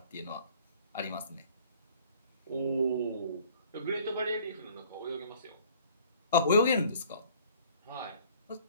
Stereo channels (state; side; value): inverted; both; correlation -0.53